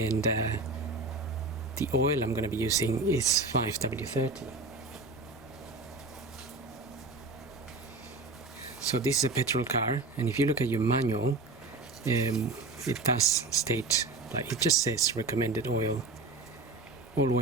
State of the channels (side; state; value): left; quieter; 3.4 dB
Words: the oil I'm going to be using is 5W30. So this is a petrol car, and if you look at your manual, it does state, like it just says recommended oil.